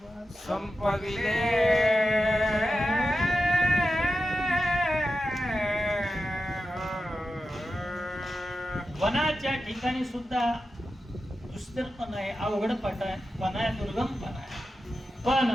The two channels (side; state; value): both; normal; correlation 0.91